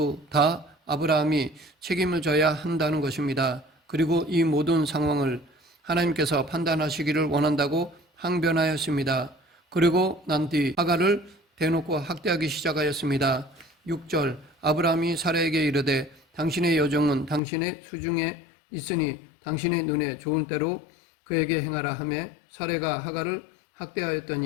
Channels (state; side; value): drops out; right; at 17.4 s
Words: 다 아브라함이 책임을 져야 한다는 것입니다. 그리고 이 모든 상황을 하나님께서 판단하시기를 원한다고 항변하였습니다. 그리고 난 뒤 하갈을 대놓고 학대하기 시작하였습니다. 6절 아브라함이 사라에게 이르되 당신의 여종은 당신의 수중에 있으니 당신의 눈에 좋은 대로 그에게 행하라 하매 사레가 하갈을